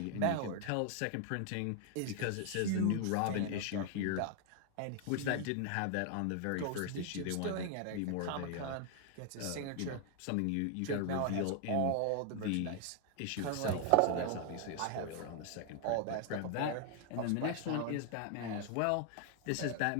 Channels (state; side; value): different; both; correlation 0.00